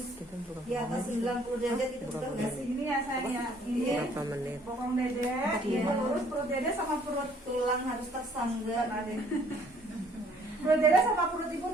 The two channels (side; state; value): both; normal; correlation 0.61